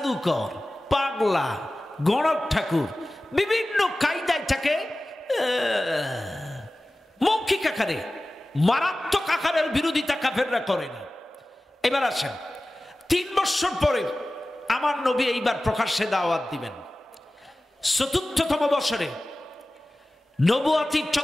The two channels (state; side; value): normal; both; correlation 0.96